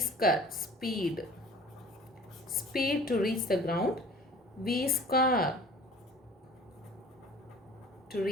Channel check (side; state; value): both; normal; correlation 0.46